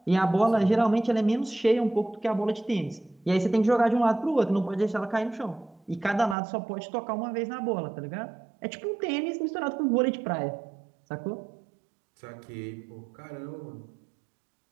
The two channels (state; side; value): drops out; left; at 6.4 s